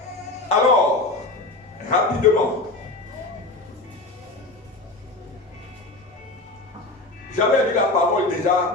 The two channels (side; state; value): right; quieter; 3.0 dB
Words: Alors, rapidement, j'avais lu la parole